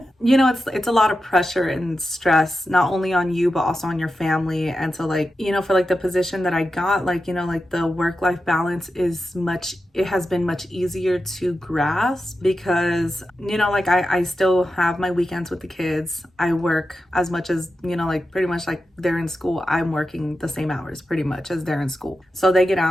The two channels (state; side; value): normal; both; correlation 0.91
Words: You know, it's a lot of pressure and stress, not only on you, but also on your family. And so, like, you know, for like the position that I got, like, you know, like the work-life balance it has been much easier to grasp, because, you know, like I still have my weekends with the kids. I work as much as, you know, like pretty much like they're in school. I'm working the same hours pretty much as they're in school. So they get